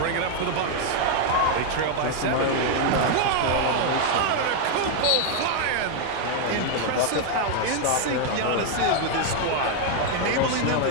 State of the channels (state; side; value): different; both; correlation 0.00